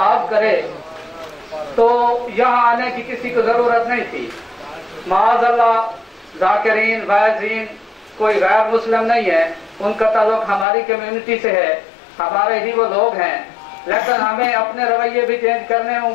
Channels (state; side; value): drops out; right; at 10.7 s